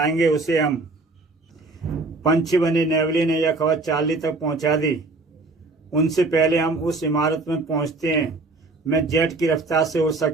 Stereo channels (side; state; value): left; quieter; 3.4 dB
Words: उसे हम। पंछी बने नेवले ने यह खबर चार्ली तक पहुंचा दी। उनसे पहले हम उस इमारत में पहुंचते हैं। मैं जेट की रफ्तार से उड़